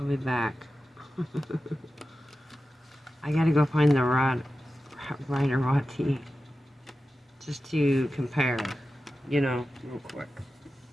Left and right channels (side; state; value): both; normal; correlation 0.93